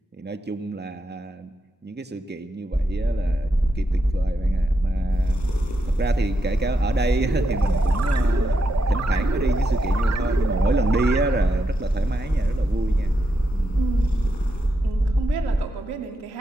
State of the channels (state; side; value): normal; both; correlation 0.84